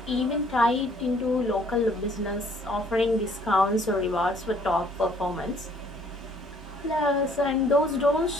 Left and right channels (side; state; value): both; normal; correlation 0.61